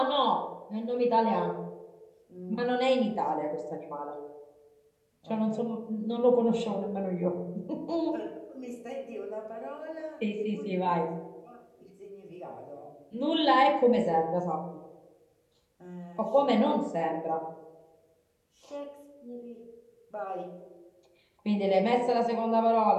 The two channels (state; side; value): identical; both; correlation 1.00